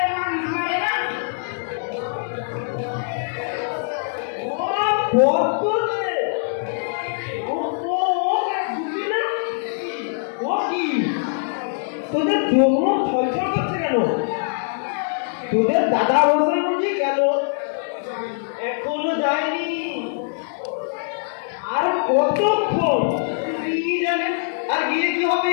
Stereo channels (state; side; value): silent; right; digital silence